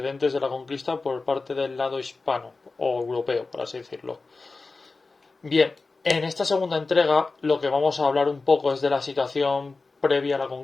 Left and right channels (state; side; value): quieter; right; 3.8 dB